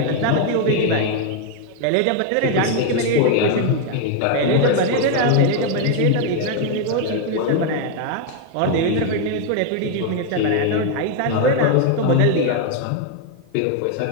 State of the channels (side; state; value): both; different; correlation 0.01